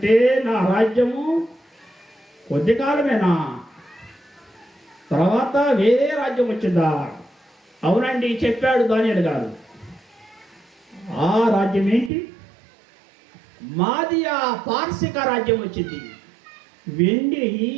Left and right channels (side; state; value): left; drops out; at 12.1 s